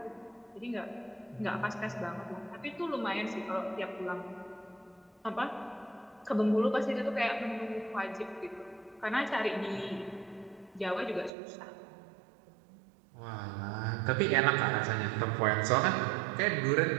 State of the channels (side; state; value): left; drops out; at 11.3 s